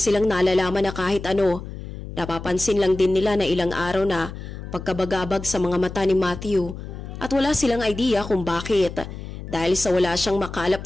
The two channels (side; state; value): left; noise; hum, 10 dB below the sound